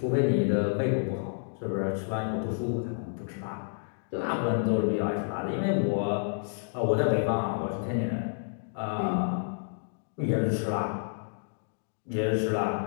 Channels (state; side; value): silent; right; digital silence